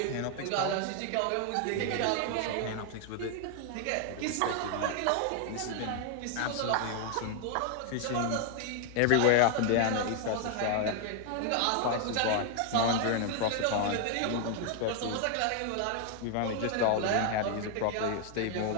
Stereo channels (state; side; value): different; both; correlation 0.00